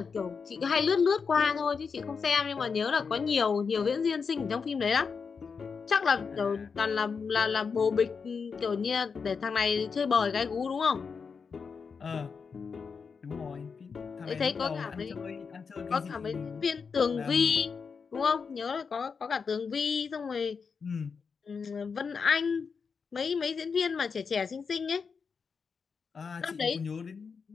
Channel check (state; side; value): quieter; right; 5.6 dB